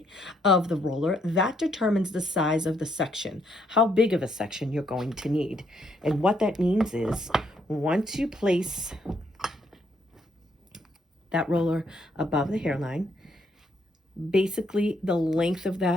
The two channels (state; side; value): normal; both; correlation 0.73